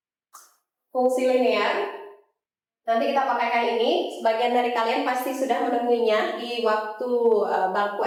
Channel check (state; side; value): identical; both; correlation 1.00